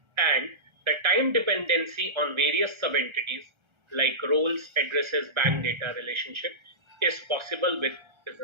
and the time dependency on various sub-entities like roles, addresses, bank data relationship is possible with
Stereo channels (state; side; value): late; left; 1.3 ms